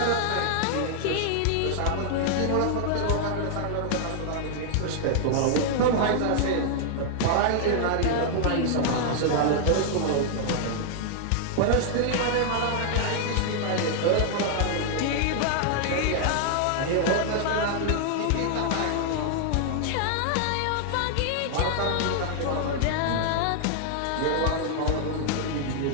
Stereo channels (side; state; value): both; different; correlation 0.00